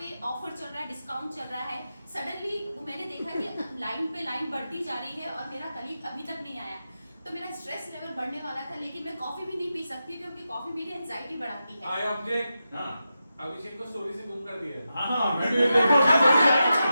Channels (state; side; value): inverted; both; correlation -0.90